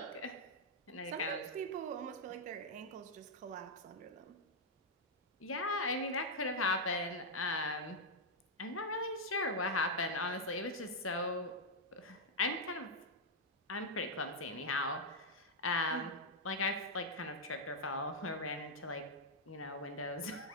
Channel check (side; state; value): both; normal; correlation -0.04